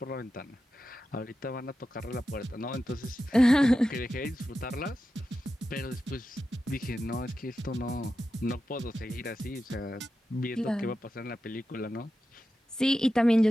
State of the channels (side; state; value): both; normal; correlation 0.91